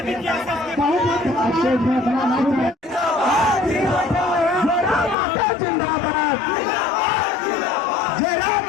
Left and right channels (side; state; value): right; drops out; at 5.2 s